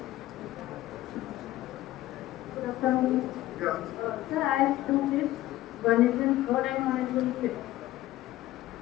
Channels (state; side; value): quieter; right; 15.6 dB